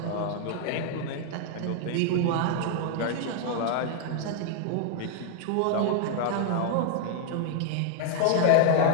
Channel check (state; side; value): different; both; correlation -0.01